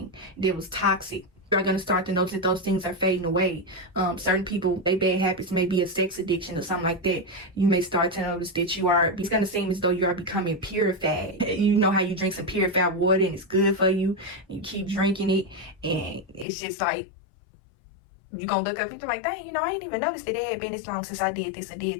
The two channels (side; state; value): right; drops out; at 16.4 s